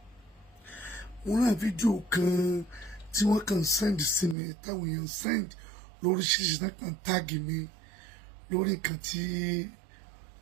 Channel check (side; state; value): left; drops out; at 4.4 s